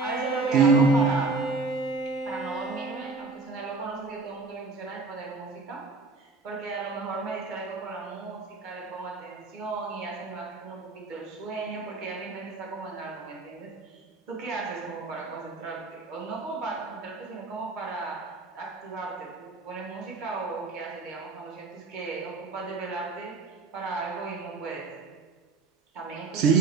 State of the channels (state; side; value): quieter; left; 3.9 dB